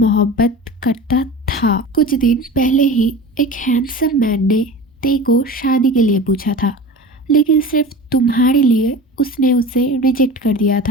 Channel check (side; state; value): both; normal; correlation 0.34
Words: करता था। कुछ दिन पहले ही एक हैंडसम मैन ने ते को शादी के लिए पूछा था, लेकिन सिर्फ तुम्हारे लिए उसने उसे रिजेक्ट कर दिया